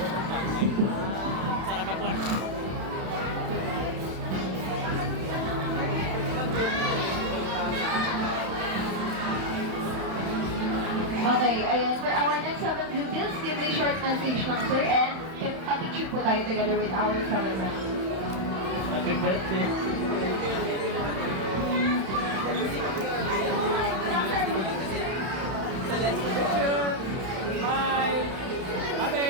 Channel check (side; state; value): left; late; 31 ms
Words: Sarap ako. Okay, ayan. For our next 7 blue bills, give a short message lang, sir, and pa-picture po tayo together with our celebrant. Happy birthday. Bye. Ate.